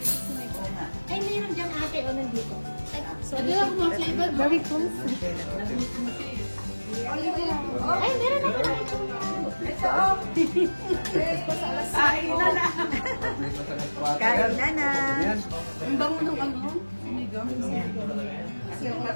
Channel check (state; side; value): inverted; both; correlation -1.00